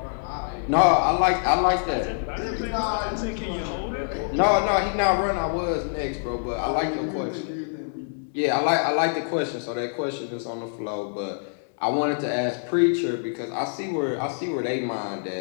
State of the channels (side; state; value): right; silent; 61 dB below the other